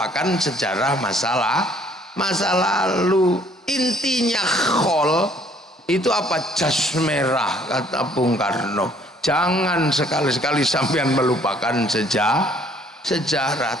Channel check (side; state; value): both; normal; correlation 0.60